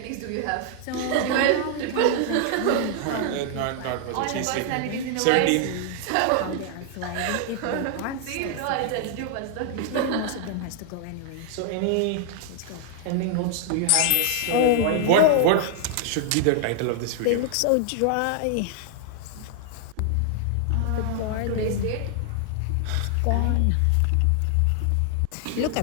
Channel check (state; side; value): different; both; correlation 0.00